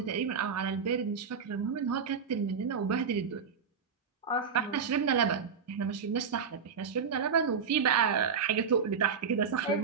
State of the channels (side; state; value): left; quieter; 6.1 dB